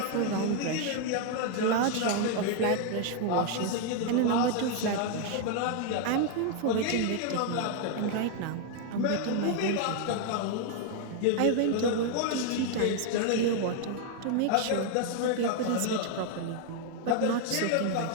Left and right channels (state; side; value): different; both; correlation 0.00